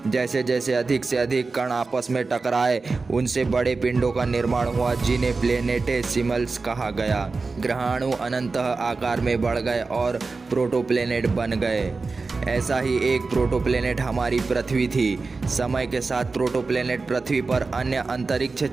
जैसे जैसे अधिक से अधिक कण आपस में टकराए, उनसे बड़े पिंडों का निर्माण हुआ, जिन्हें प्लेनेटेसिमल्स कहा गया। ग्रहाणु अनंतः आकार में बढ़ गए और प्रोटोप्लेनेट बन गए। ऐसा ही एक प्रोटोप्लेनेट हमारी पृथ्वी थी। समय के साथ प्रोटोप्लेनेट पृथ्वी पर अन्य अंतरिक्ष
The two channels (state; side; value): quieter; left; 4.0 dB